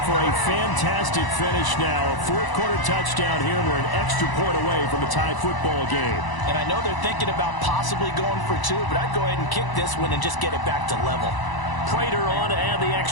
for a fantastic finish now. A 4th quarter touchdown here. We're an extra point away from a tie football game. And I know they're thinking about possibly going for 2, but I'd go ahead and kick this one and just get it back to level. Prater on to add the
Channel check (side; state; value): right; late; 1.0 ms